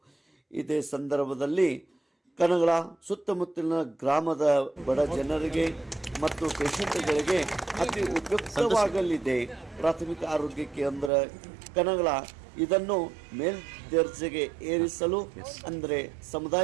ಇದೇ ಸಂದರ್ಭದಲ್ಲಿ ಕನಗಲ ಸುತ್ತಮುತ್ತಲಿನ ಗ್ರಾಮದ ಬಡ ಜನರಿಗೆ ಮತ್ತು ಪೇಷಂಟ್ಗಳಿಗೆ ಅತಿ ಉಪಯುಕ್ತವಾಗಲಿದೆ ಪ್ರಾಥಮಿಕ ಆರೋಗ್ಯ ಕೇಂದ್ರ ಕನಗಲ. ಇದನ್ನು ಮೇಲ್ದರ್ಜೆಗೆ ಏರಿಸಲು ಅಂದರೆ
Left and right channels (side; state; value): left; drops out; at 11.1 s